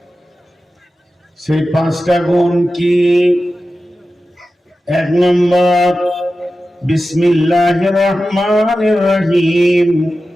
সেই 5টা গুণ কি? 1 নম্বর, বিসমিল্লাহির রহমানির রহিম।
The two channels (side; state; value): both; normal; correlation 0.93